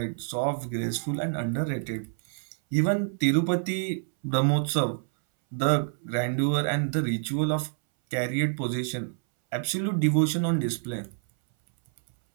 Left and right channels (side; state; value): left; silent; 60 dB below the other